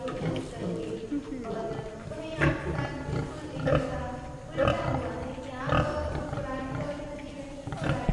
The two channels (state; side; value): identical; both; correlation 1.00